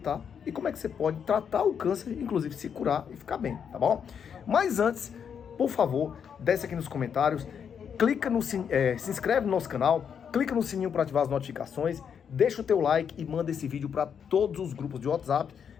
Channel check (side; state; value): right; quieter; 7.5 dB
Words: e como é que você pode tratar o câncer, inclusive se curar e ficar bem, tá bom? Mas antes, por favor, desce aqui nos comentários, clica no se inscreve no nosso canal, clica no sininho para ativar as notificações, deixa o teu like e manda esse vídeo para todos os grupos de WhatsApp,